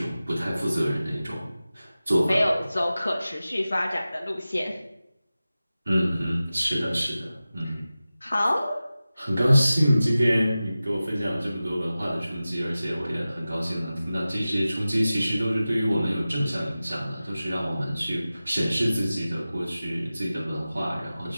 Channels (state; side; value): inverted; both; correlation -0.95